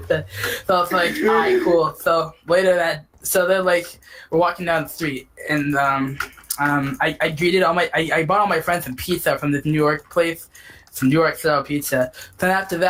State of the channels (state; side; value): identical; both; correlation 1.00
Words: like, all right, cool. So later so they're like, we're walking down the street, and I greeted I bought all my friends some pizza from this New York place, some New York style pizza. Then after